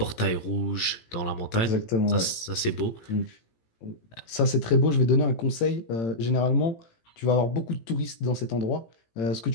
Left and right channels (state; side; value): late; right; 18 ms